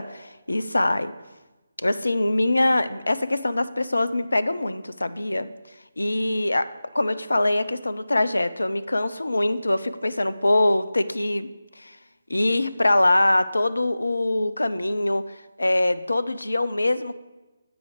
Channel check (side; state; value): both; inverted; correlation -0.97